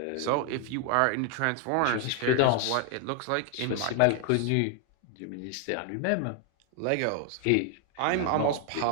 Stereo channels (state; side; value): different; both; correlation 0.00